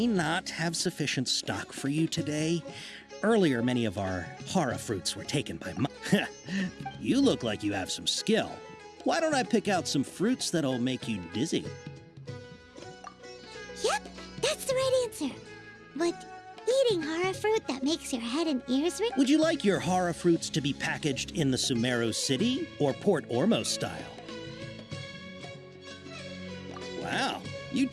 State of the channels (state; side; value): identical; both; correlation 1.00